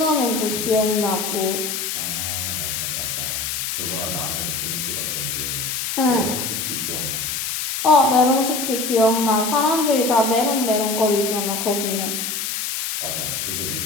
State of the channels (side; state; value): left; noise; hiss, 2 dB below the sound